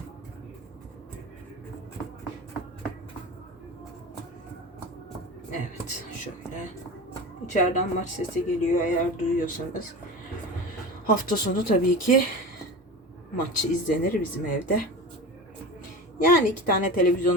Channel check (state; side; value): normal; both; correlation 0.30